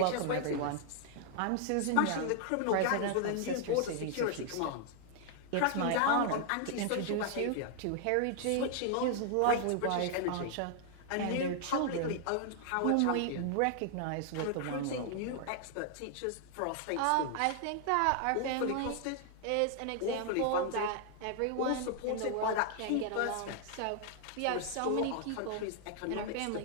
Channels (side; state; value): both; different; correlation 0.00